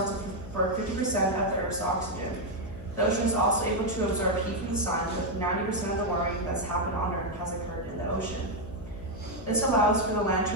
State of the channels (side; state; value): left; noise; hum, 13 dB below the sound